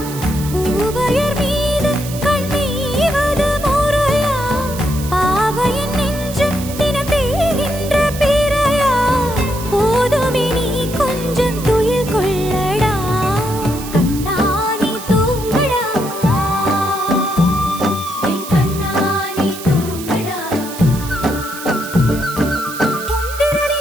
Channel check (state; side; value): noise; right; hiss, 12 dB below the sound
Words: பூவையர் மீது கண்ணீவது முறையா பாவையின் நெஞ்சு தினம் தேகின்ற பிறையா போதுமே நீ கொஞ்சம் துயில் கொள்ளடா கண்ணானி தூங்கடா என் கண்ணானி தூங்கடா உந்திரனே